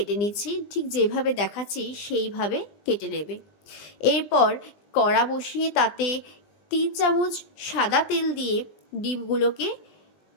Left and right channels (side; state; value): right; late; 20 ms